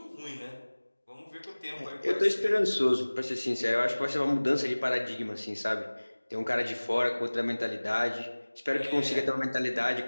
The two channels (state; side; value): inverted; both; correlation -1.00